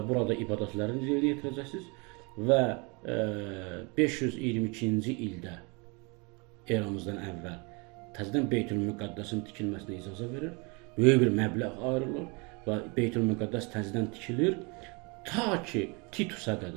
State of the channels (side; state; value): left; quieter; 30.3 dB